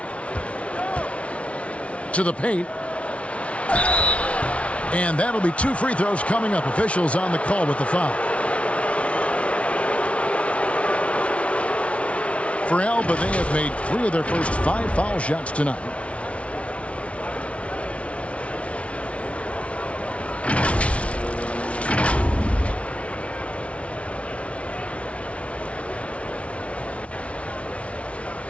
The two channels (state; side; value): late; right; 0.062 ms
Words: To the paint. And that'll be 2 free throws coming up. Officials on the call with the foul. For Alba, they have made 3 of their first 5 foul shots tonight.